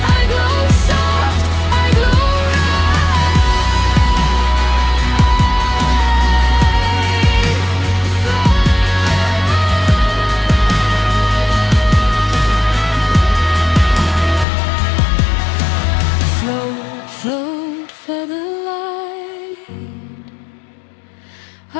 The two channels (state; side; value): drops out; right; at 14.5 s